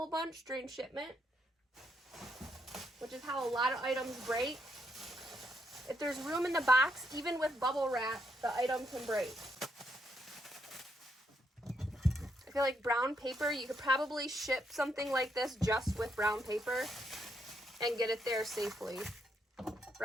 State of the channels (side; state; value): both; normal; correlation 0.77